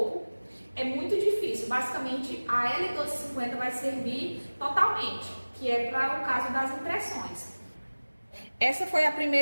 É muito difícil, basicamente a L1250 vai servir totalmente, que é para o caso das impressões. Essa foi a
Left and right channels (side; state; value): both; inverted; correlation -1.00